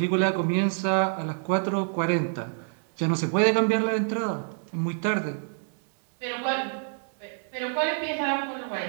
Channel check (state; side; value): silent; left; 56 dB below the other